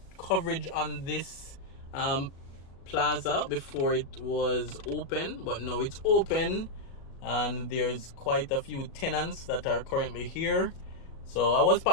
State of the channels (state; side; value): late; right; 37 ms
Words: coverage on this plaza before it was open, but now it's open and there's quite a few tenants that are currently here. So I was